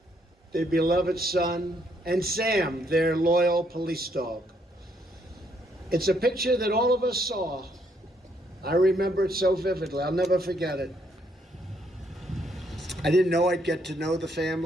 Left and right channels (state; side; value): normal; both; correlation 0.71